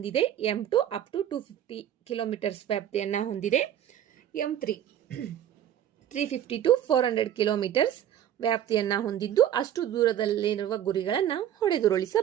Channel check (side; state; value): left; quieter; 10.7 dB